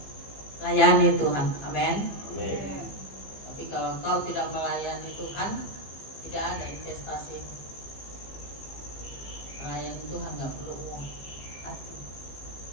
Layani Tuhan, amin. Tapi kalau kau tidak melayani Tuhan, tidak ada investasi. Melayani Tuhan nggak perlu uang.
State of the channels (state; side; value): late; right; 15 ms